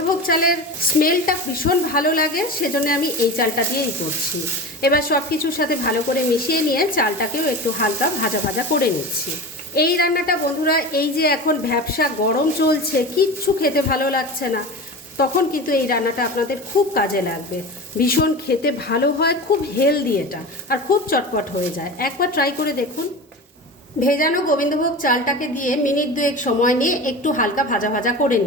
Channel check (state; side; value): normal; both; correlation 0.29